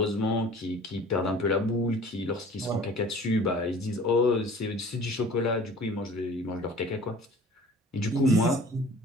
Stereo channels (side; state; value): both; normal; correlation 0.46